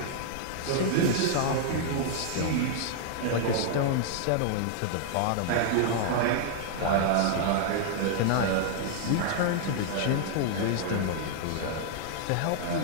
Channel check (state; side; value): different; both; correlation -0.01